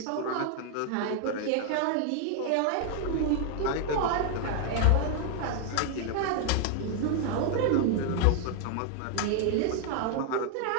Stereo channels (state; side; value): different; both; correlation 0.00